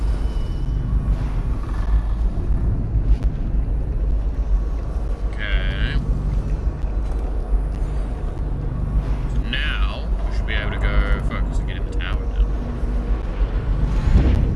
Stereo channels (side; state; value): both; identical; correlation 1.00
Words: Okay. So now we should be able to go focus and get in the tower now.